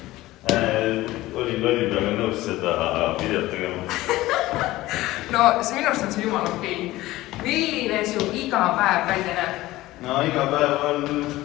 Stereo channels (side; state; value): right; quieter; 17.4 dB